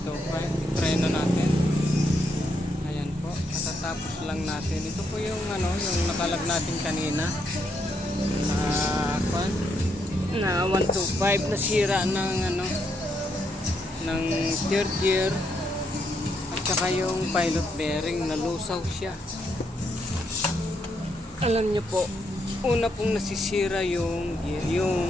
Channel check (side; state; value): both; normal; correlation 0.77